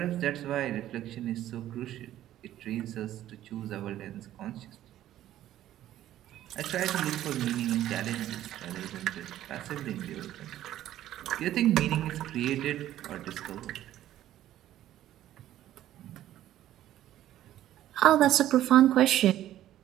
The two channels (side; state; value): left; quieter; 12.9 dB